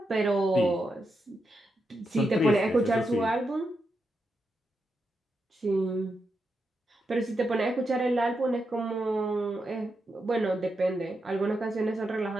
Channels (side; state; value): both; normal; correlation 0.85